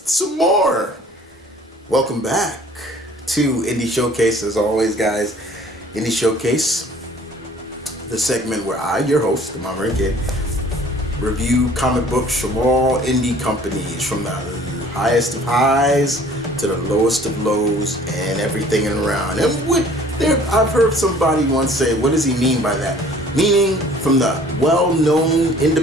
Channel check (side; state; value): both; normal; correlation 0.52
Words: more. Welcome back to Indie Showcase, as always, guys. Indie Showcase, the segment where I, your host, the M.V.K, review comic books from all indie companies, from the highest of highs to the lowest of lows, and everything in around. And I've heard somebody once say, what does he mean by that? Meaning from the well-known